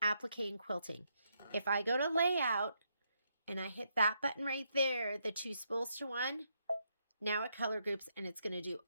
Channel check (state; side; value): inverted; both; correlation -0.77